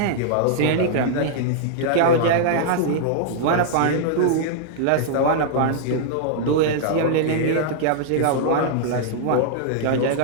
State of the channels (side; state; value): both; different; correlation -0.01